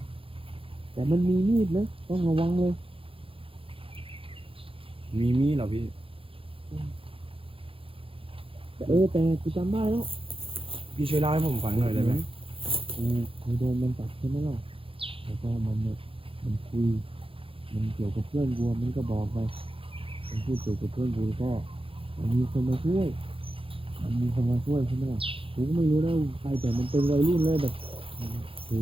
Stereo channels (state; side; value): late; left; 0.26 ms